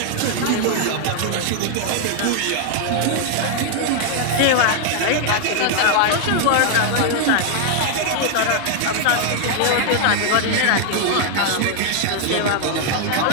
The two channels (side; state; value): both; different; correlation 0.00